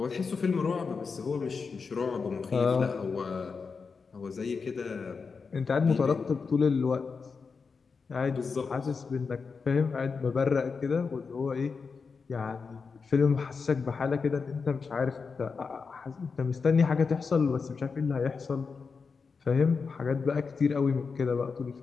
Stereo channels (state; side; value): quieter; right; 5.1 dB